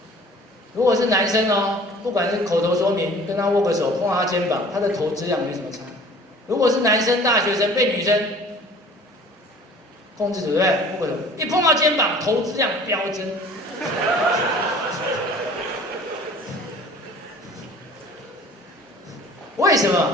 如果是男生哦，不管是口头说明，跟他握个手，碰到他肩膀，他的投资量没什么差。如果是男生大学生被女生控制住，对不对？握个手，一碰到肩膀，投资量飙增。为什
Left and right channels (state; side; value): normal; both; correlation 0.48